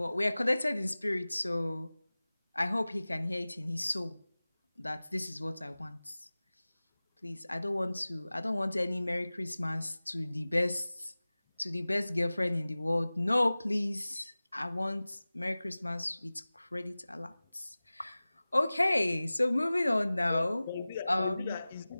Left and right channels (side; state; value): both; inverted; correlation -0.98